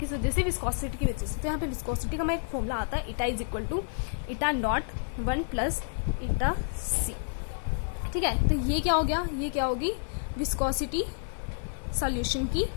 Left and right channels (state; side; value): silent; right; 56 dB below the other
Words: वजह से, विस्कोसिटी की वजह से। तो यहाँ पे विस्कोसिटी का मैं एक फॉर्मूला आता है, इटा इज इक्वल टू इटा नॉट 1 प्लस इटा C, ठीक है। तो ये क्या हो गया, ये क्या होगी, विस्कोसिटी सॉल्यूशन की,